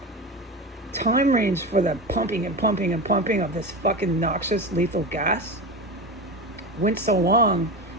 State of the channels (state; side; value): normal; both; correlation 0.24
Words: time range for the pumping and pumping and pumping of this fucking noxious lethal gas went so long